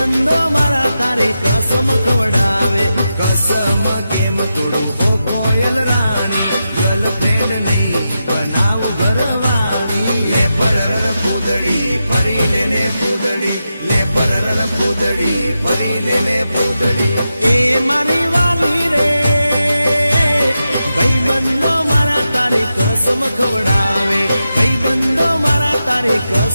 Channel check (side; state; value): both; inverted; correlation -0.89